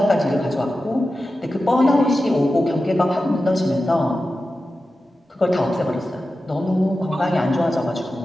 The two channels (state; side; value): normal; both; correlation 0.93